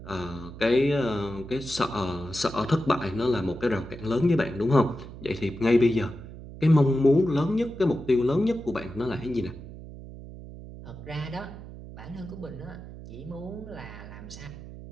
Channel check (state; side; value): noise; right; hum, 14 dB below the sound